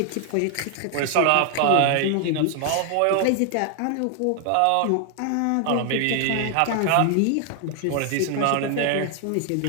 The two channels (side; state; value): both; different; correlation 0.00